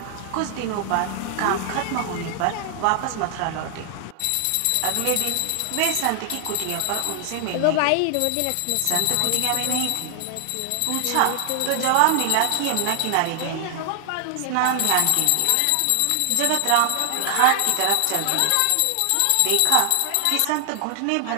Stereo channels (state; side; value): different; both; correlation 0.00